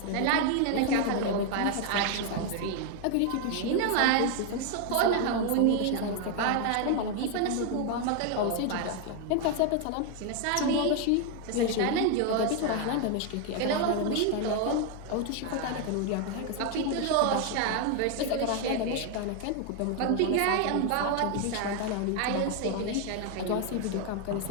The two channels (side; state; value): both; different; correlation 0.01